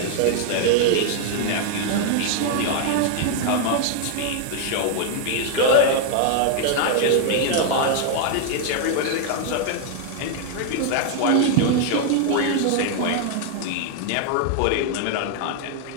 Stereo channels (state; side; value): different; both; correlation 0.00